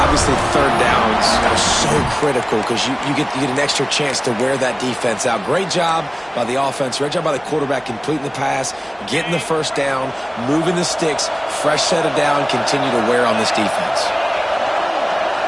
Obviously, 3rd downs are so critical because you get an extra chance to wear that defense out. Great job by the offense. Great job by the quarterback completing the pass, getting the 1st down, moving the sticks, fresh set of down, continue to wear on this defense.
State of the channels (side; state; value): both; identical; correlation 1.00